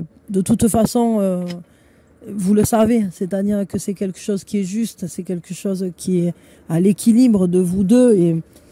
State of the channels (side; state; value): both; identical; correlation 1.00